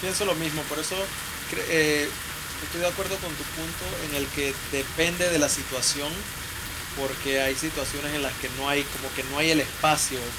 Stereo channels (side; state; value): both; identical; correlation 1.00